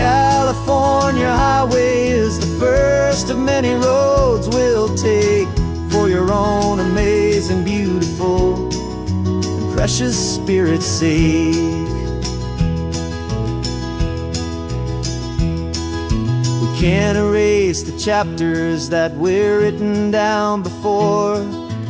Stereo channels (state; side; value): identical; both; correlation 1.00